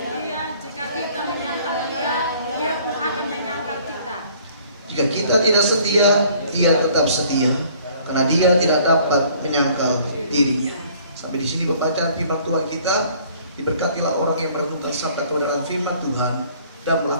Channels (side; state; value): both; inverted; correlation -0.56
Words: Dia. Jika kita menyangkal Dia, Dia pun akan menyangkal kita. Jika kita tidak setia, Dia tetap setia, karena Dia tidak dapat menyangkal dirinya. Sampai di sini pembacaan firman Tuhan kita. Diberkatilah orang yang merenungkan sabda kebenaran firman Tuhan dan